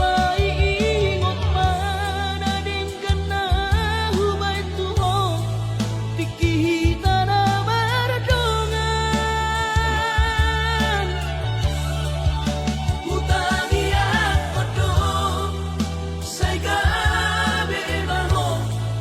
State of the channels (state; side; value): identical; both; correlation 1.00